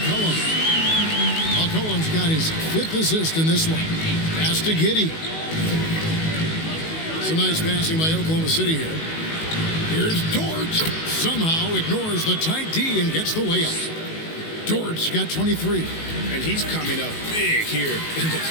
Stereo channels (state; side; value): late; right; 19 ms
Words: McCollum's got his 5th assist in this one. Pass to Giddey. Some nice passing by Oklahoma City here. Here's Dort. Somehow ignores the tight D and gets the layup. Dort's got 23. And he's coming up big here in the